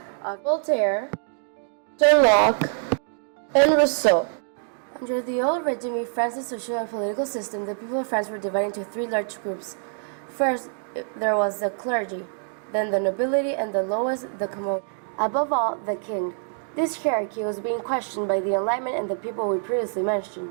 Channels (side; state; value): left; silent; digital silence